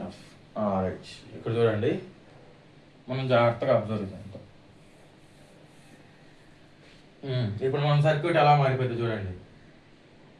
రైట్, ఇక్కడ చూడండి, మనం జాగ్రత్తగా అబ్జర్వ్ చేద్దాం. ఇప్పుడు మన సర్క్యూట్ ఎలా మారిపోయింది చూడండి.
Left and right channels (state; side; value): identical; both; correlation 1.00